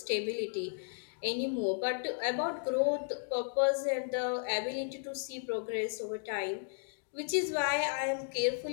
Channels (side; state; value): right; silent; digital silence